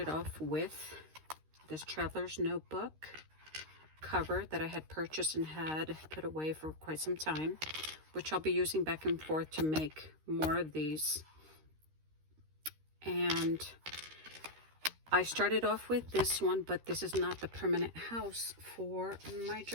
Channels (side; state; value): left; late; 13 ms